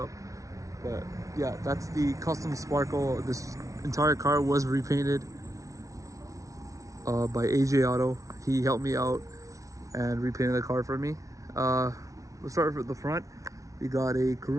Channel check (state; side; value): late; left; 0.16 ms